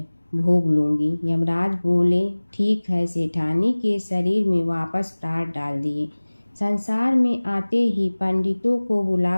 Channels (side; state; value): both; inverted; correlation -1.00